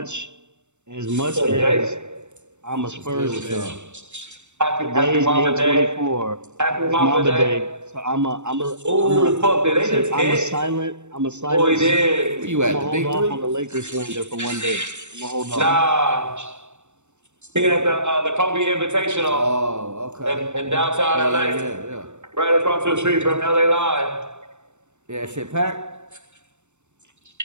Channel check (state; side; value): late; left; 0.84 ms